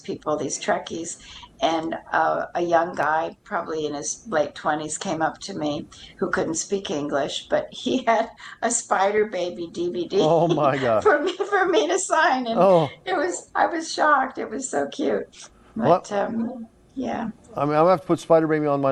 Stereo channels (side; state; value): both; identical; correlation 1.00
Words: these Trekkies, and a young guy, probably in his late 20s, came up to me who couldn't speak English, but he had a Spider Baby Oh DVD my God. for me to sign, and Oh, I was shocked. It was so cute, but well, yeah. I mean, I'm gonna have to put Spider Baby on